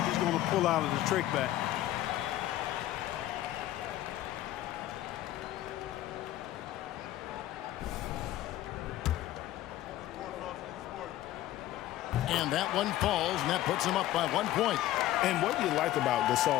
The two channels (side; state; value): right; quieter; 14.2 dB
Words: he's going to pull out of the trick bag. And that one falls, and that puts him up by 1 point. And what you like about